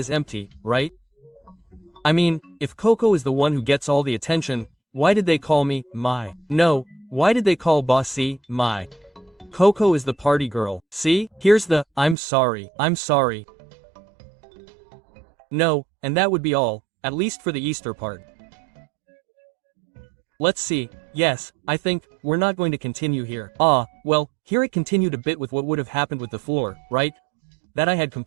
empty, right? I mean, if Coco is the one who gets all the attention, why did they call me, my? No, why did they call Bossy, my? Coco is the party girl, see? Here's the, I'm sorry. No, and that would be all, at least for the Easter part. Let's see, yes, I think, we're not going to continue here. Well, here it continued a bit with what would have happened with the floor, right? That I had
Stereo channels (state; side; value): drops out; left; at 12.2 s